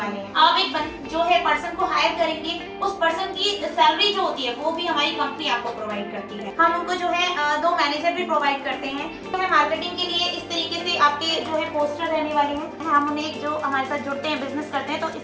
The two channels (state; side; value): identical; both; correlation 1.00